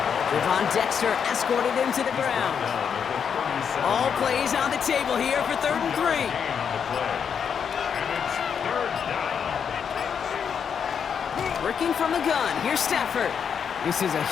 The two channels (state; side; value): quieter; right; 7.2 dB